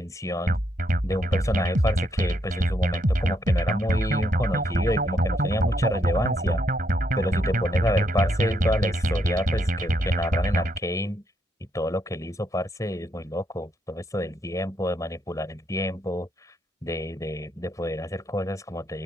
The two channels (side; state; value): both; normal; correlation 0.76